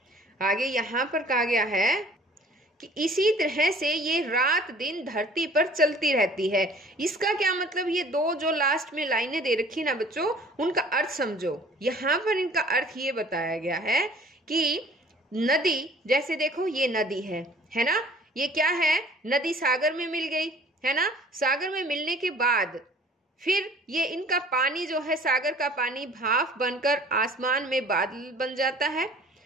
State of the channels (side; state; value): both; normal; correlation 0.50